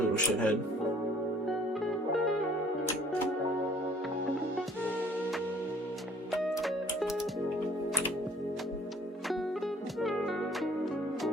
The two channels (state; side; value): normal; both; correlation 0.56